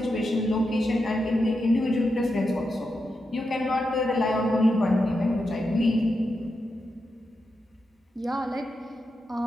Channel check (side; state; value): both; normal; correlation 0.87